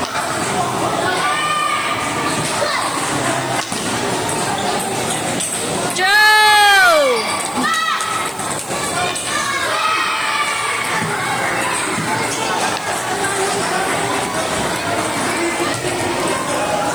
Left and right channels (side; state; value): right; noise; hiss, 20 dB below the sound